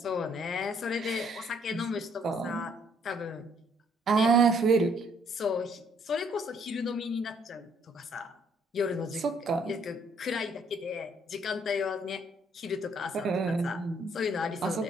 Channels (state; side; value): normal; both; correlation 0.65